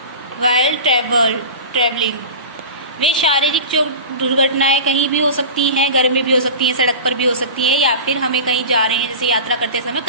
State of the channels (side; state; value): both; inverted; correlation -0.31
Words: वाइल ट्रेवलिंग। वे शारीरिक दुर्घटनाएं कहीं भी हो सकती हैं, घर में भी हो सकती हैं, सड़क पर भी हो सकती हैं, या फिर हमें कहीं जा रहे हैं जैसे यात्रा करते समय